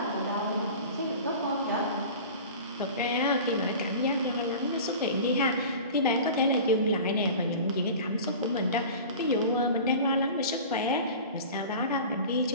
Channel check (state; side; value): inverted; both; correlation -0.37